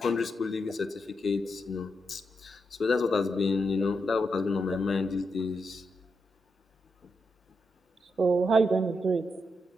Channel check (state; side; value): normal; both; correlation 0.84